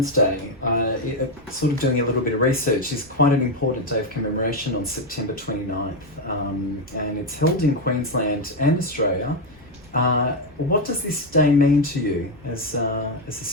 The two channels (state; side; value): noise; left; rumble, 27 dB below the sound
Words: Day, sort of doing a little bit of research, is quite an important day of commemoration on September 29th, and it's held in Queensland and Australia. What does this day mean to you as a